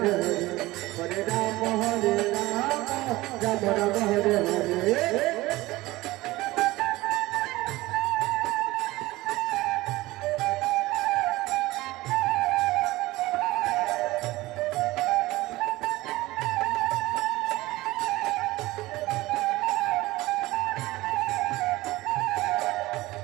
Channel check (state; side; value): quieter; left; 19.1 dB